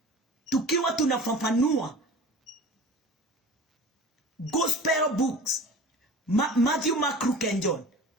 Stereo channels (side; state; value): both; normal; correlation 0.39